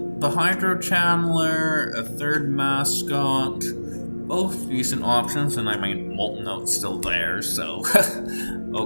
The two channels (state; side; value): inverted; both; correlation -1.00